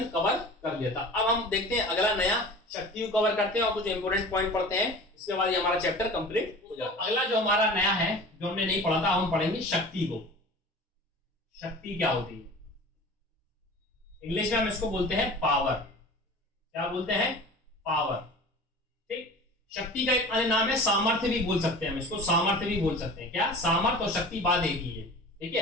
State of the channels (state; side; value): normal; both; correlation 0.39